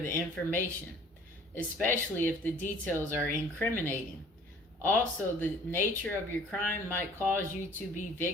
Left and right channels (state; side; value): normal; both; correlation 0.52